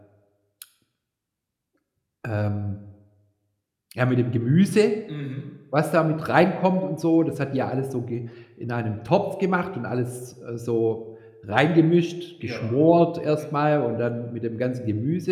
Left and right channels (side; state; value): both; identical; correlation 1.00